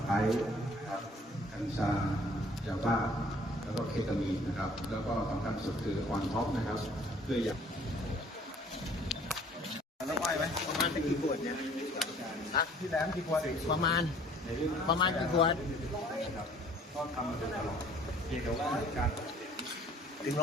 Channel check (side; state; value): both; normal; correlation 0.55